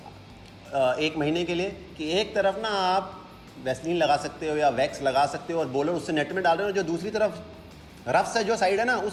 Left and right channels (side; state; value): both; identical; correlation 1.00